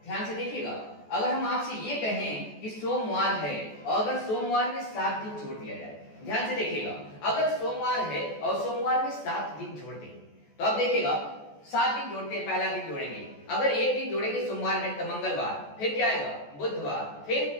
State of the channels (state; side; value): late; right; 14 ms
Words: ध्यान से देखिएगा, अगर हम आपसे ये कहें कि सोमवार है और अगर सोमवार में 7 दिन जोड़ दिया जाए, ध्यान से देखिएगा, अगर सोमवार है और सोमवार में 7 दिन जोड़ दें तो अब देखिएगा 7 दिन जोड़ते हैं, पहला दिन जोड़ेंगे, अगर एक दिन जोड़ेंगे सोमवार में तो मंगलवार, फिर क्या आएगा, बुधवार,